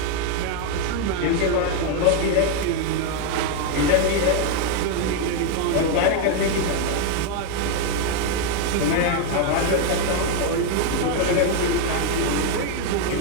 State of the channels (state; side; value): different; both; correlation 0.01